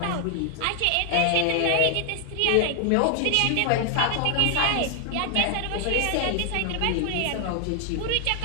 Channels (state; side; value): different; both; correlation 0.00